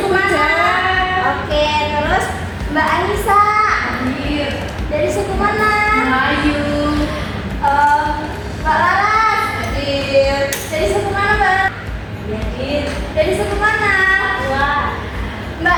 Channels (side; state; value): both; identical; correlation 1.00